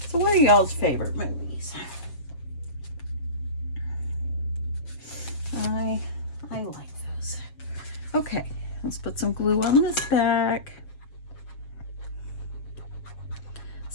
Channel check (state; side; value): late; right; 7.3 ms